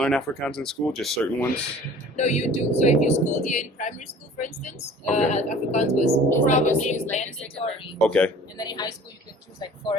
Afrikaans in school, just certain ones? No, you do. So if you schooled here in primary school, for instance, Okay. Afrikaans was probably mandatory. Okay. And then in high school, you can choose like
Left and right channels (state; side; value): normal; both; correlation 0.47